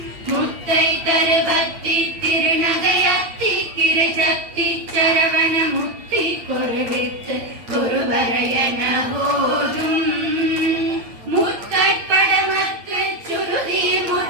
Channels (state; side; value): late; left; 9.0 ms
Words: முத்தை தருபத்தி திருநகையத்திக்கிற சக்தி சரவண முத்தி குருவித்து குருவரையன போதும் முற்படமக்கு சுருதி